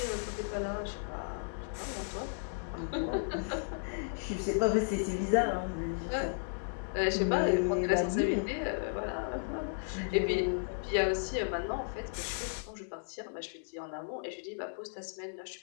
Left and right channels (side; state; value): right; silent; digital silence